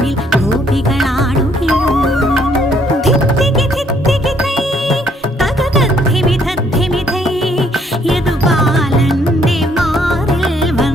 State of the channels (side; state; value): both; normal; correlation 0.67